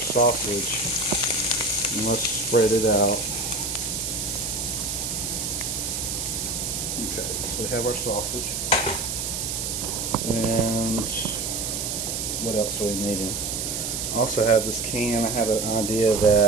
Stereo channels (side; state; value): right; noise; hiss, 2 dB below the sound